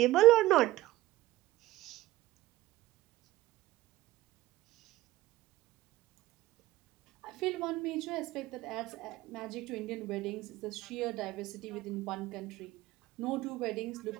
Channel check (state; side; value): quieter; left; 16.9 dB